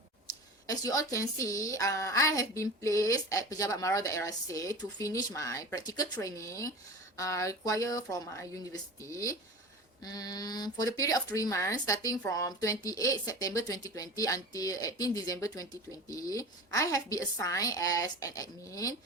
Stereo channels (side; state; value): both; normal; correlation 0.33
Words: As you all can see, I have been placed at Pejabat Daerah to finish my practical training required from my university. For the period of 3 months, starting from 28 September 2020 until 18 December 2020, I have been assigned as an admin,